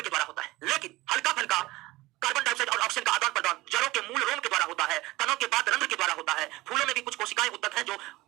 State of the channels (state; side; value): quieter; left; 19.4 dB